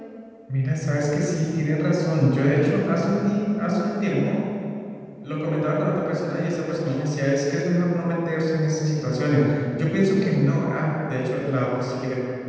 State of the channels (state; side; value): identical; both; correlation 1.00